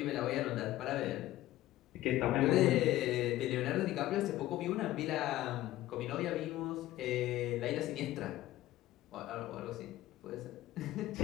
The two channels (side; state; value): right; quieter; 15.2 dB